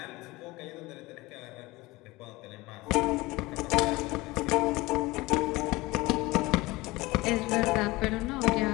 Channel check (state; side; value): quieter; right; 21.2 dB